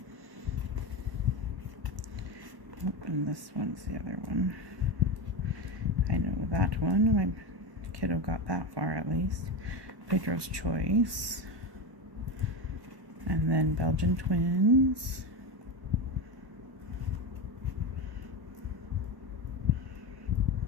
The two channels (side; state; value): left; late; 1.2 ms